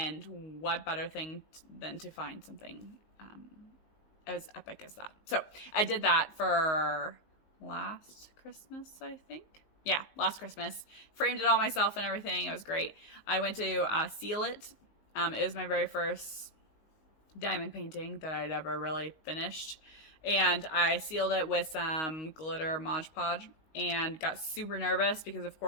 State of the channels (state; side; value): late; right; 19 ms